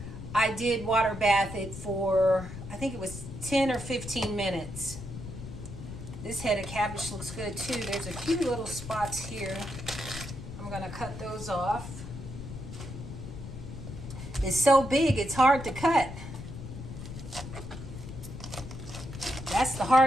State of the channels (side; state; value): left; noise; rumble, 10 dB below the sound